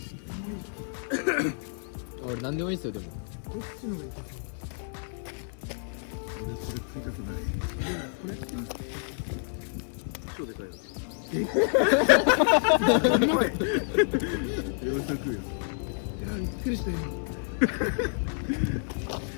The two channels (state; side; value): silent; right; digital silence